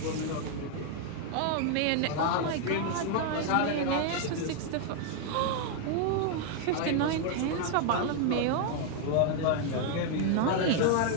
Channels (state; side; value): different; both; correlation 0.00